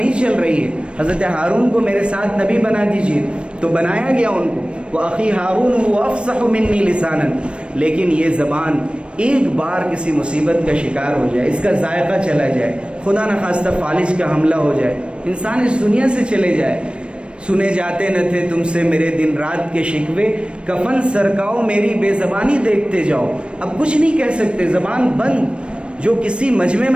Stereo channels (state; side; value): late; left; 0.058 ms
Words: چل رہی ہے، حضرت ہارون کو میرے ساتھ نبی بنا دیجیے، تو بنایا گیا ان کو، وَأَخِي هَارُونُ هُوَ أَفْصَحُ مِنِّي لِسَانًا۔ لیکن یہ زبان ایک بار کسی مصیبت کا شکار ہو جائے، اس کا ذائقہ چلا جائے، خدا نخواستہ فالج کا حملہ ہو جائے، انسان اس دنیا سے چلے جائے۔ سنے جاتے نہ تھے تم سے میرے دن رات کے شکوے، کفن سرکاؤ میری بے زبانی دیکھتے جاؤ۔ اب کچھ نہیں کہہ سکتے، زبان بند، جو کسی مجمع